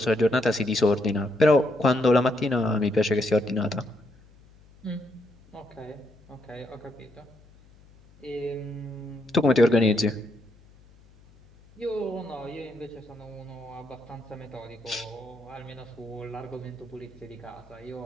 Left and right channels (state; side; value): noise; left; hum, 26 dB below the sound